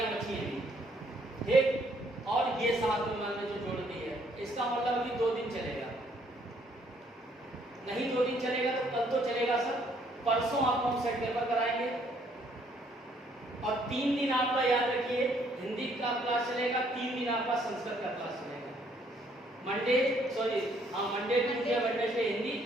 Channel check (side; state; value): both; normal; correlation 0.66